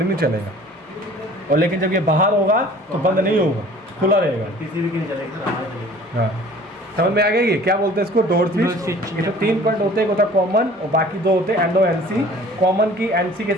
नहीं चलेगा। और लेकिन जब ये बाहर होगा तो बंद नहीं होगा, खुला रहेगा, PCB की नहीं चलेगा। हाँ समझ में आ गया। ये क्या बोलते हैं इसको, डोर स्विच। इसमें 3 पॉइंट होते हैं, एक होता है कॉमन और बाकी 2 होते हैं NO NC। कॉमन की NC के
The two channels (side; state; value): both; normal; correlation 0.49